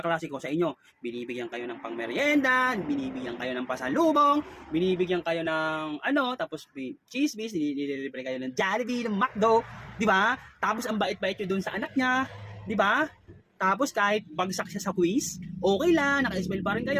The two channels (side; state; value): both; identical; correlation 1.00